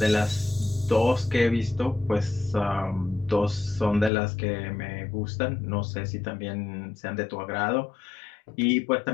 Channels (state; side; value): drops out; right; at 4.1 s